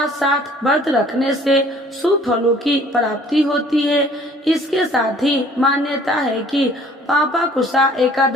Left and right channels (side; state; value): both; normal; correlation 0.55